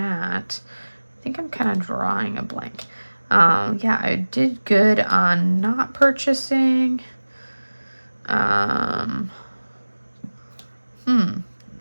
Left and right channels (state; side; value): inverted; both; correlation -1.00